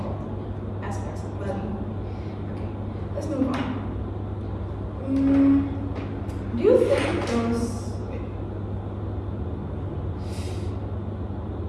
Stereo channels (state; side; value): identical; both; correlation 1.00